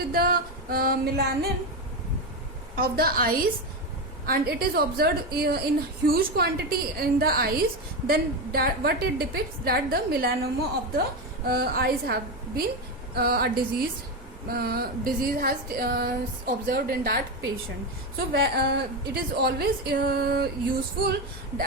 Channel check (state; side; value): normal; both; correlation 0.14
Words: the melanin of the eyes, and it is observed in huge quantity in the eyes? Then what it depicts, that the melanoma of the eyes have been a disease has observed in that patient. So it is always useful